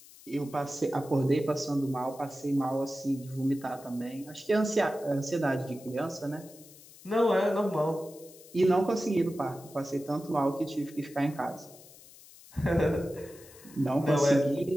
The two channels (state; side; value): noise; left; hiss, 21 dB below the sound